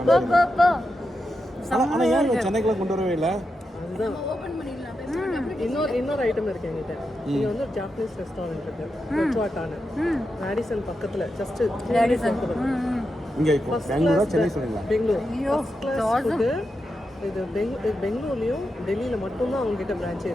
ஆனால் ஏன் இங்கே சென்னைக்குலாம் கொண்டு வரவே இல்லை? அதுதான் இன்னொரு ஐட்டம் இருக்கு என்கிட்ட. இங்கே வந்து ஒரு ஜாப்பனீஸ் ரெஸ்டாரண்ட் இருக்கு, கொச்சுவாட்டான மேடிசன் பக்கத்தில். ஜஸ்ட் இங்கே பெங்களூரா சென்னை சொன்னீங்களா? Bangalore class food. இது பெங்களூர்லேயும் டெல்லியில் மட்டும்தான் அவங்ககிட்ட பிரான்ச்சே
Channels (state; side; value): normal; both; correlation 0.87